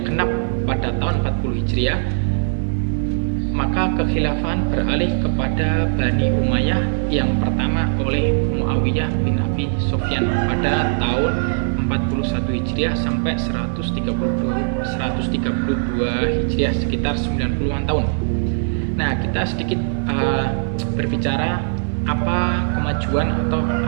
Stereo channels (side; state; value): left; silent; digital silence